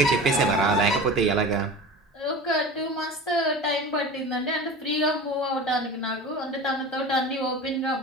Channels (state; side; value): normal; both; correlation 0.34